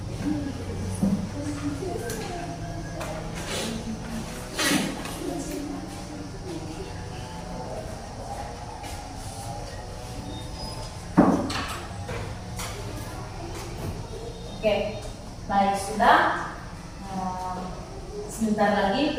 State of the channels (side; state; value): both; identical; correlation 1.00